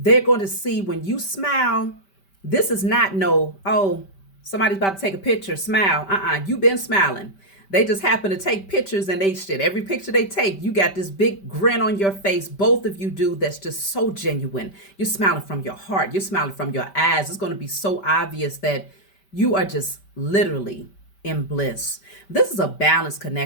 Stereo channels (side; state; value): right; late; 5.1 ms